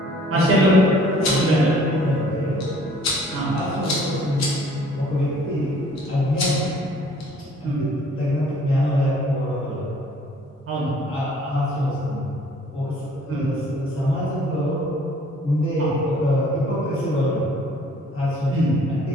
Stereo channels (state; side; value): normal; both; correlation 0.56